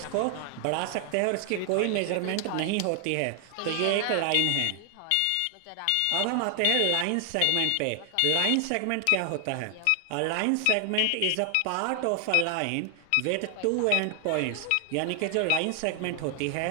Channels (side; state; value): both; different; correlation 0.00